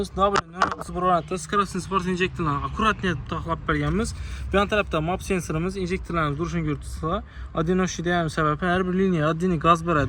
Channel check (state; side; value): identical; both; correlation 1.00